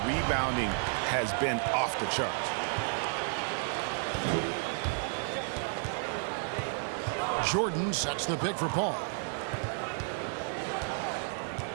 rebounding has been off the charts. Jordan sets the pick for Paul.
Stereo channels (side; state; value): left; silent; 55 dB below the other